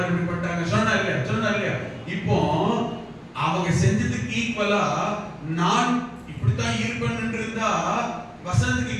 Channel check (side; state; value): both; identical; correlation 1.00